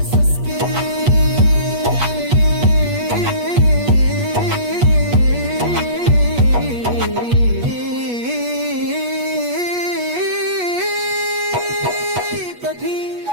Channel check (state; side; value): late; left; 8.3 ms